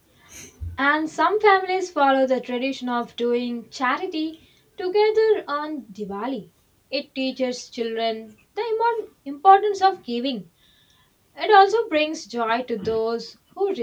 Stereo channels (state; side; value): identical; both; correlation 1.00